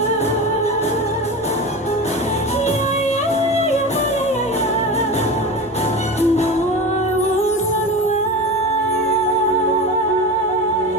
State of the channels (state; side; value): normal; both; correlation 0.27